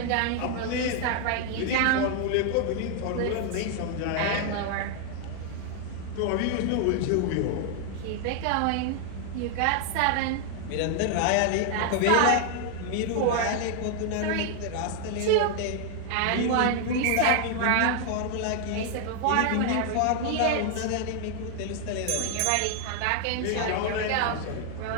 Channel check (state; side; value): different; both; correlation 0.00